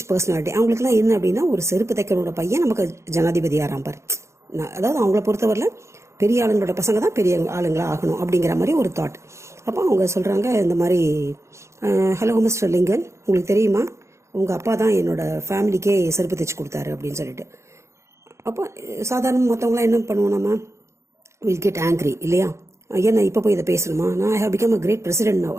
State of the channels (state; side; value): late; left; 0.14 ms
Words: பர்சனாலிட்டி, அவங்களுக்குலாம் என்ன அப்படின்னா, ஒரு செருப்பு தைக்கிறோட பையன் நமக்கு ஜனாதிபதி ஆரம்பார். அதாவது அவங்கள பொறுத்தவரையில் பெரிய ஆளுங்களோட பசங்க தான் பெரிய ஆளுங்களா ஆகணும் அப்படிங்கிற மாதிரி ஒரு தாட். அப்போ அவங்க சொல்கிறாங்க இந்த மாதிரி, ஹலோ மிஸ்டர் லிங்கன், உங்களுக்கு தெரியுமா உங்கள் அப்பா தான் என்னோட ஃபேமிலிக்கே செருப்பு தைச்சு கொடுத்தாரு அப்படின்னு சொல்லிட்டு. அப்போ சாதாரண மற்றவங்களாம் என்ன பண்ணுவோம், நம்ம வில் கெட் ஆங்க்ரி இல்லையா? ஏன்னா இப்போ போய் இதை பேசணுமா, நான் I have become a great president now